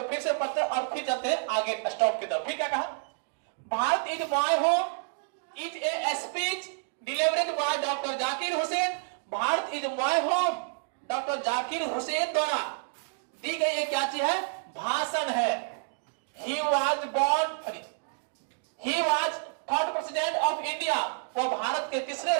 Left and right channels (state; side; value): silent; left; digital silence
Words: फिर से पढ़ते और फिर जाते हैं आगे स्टॉप की तरफ। फिर क्या कहा? Bharat is my home is a speech delivered by doctor Zakir Hussain. Bharat is my home doctor Zakir Hussain द्वारा दी गई एक क्या चीज है? भाषण है। He was third president of India, वो भारत के तीसरे